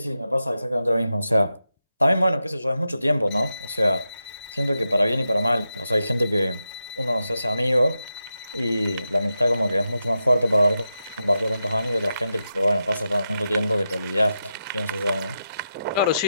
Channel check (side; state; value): both; inverted; correlation -0.88